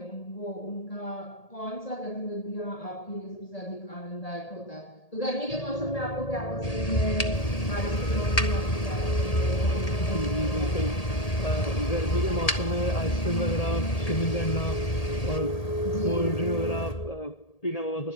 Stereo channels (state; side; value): late; right; 1.8 ms